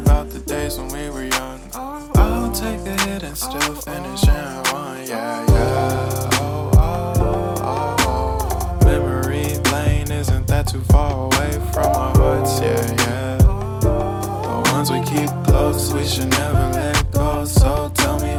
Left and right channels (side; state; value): both; identical; correlation 1.00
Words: the days when we were young. I'll take a hit and still finish in one. Yeah, yeah. Oh, oh, oh, oh. Memory lane isn't that too far away from our hearts. Yeah, yeah. The ones we keep close, we should never let go. So tell me